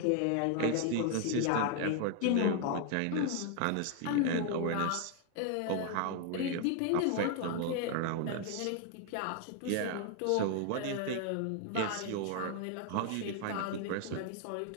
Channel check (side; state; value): both; different; correlation 0.00